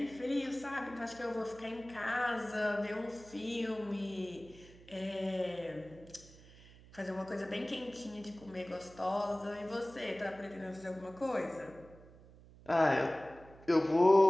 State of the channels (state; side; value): noise; right; hum, 22 dB below the sound